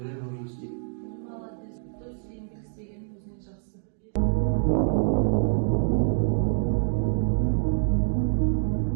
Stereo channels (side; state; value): left; silent; digital silence